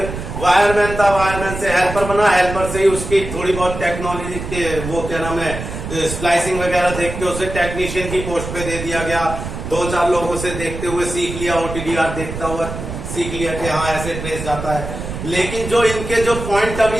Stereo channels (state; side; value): noise; right; rumble, 7 dB below the sound